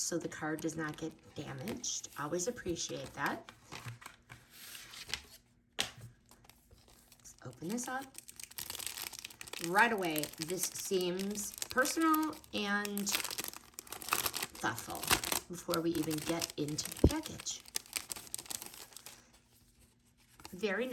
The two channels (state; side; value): identical; both; correlation 1.00